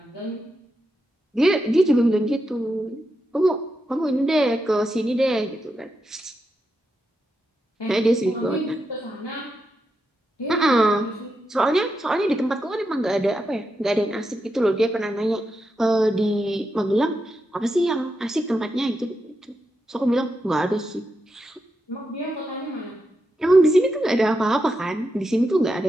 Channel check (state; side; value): normal; both; correlation 0.86